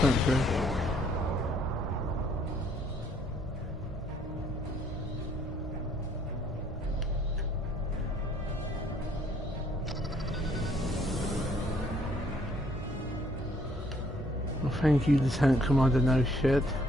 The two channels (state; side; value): normal; both; correlation 0.64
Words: here. Well, thank you, Lieutenant Commander No Shit.